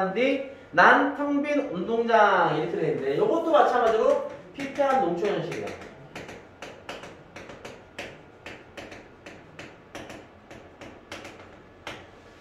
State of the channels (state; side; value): identical; both; correlation 1.00